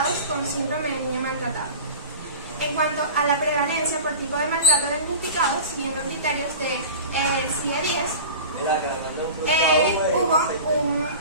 con síndrome de niño maltratado. En cuanto a la prevalencia por tipo de maltrato diagnosticado, siguiendo criterios de CIE-10, hubo un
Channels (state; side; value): inverted; both; correlation -0.34